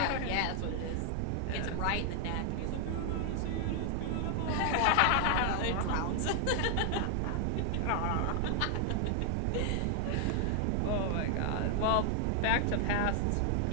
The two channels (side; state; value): both; different; correlation 0.00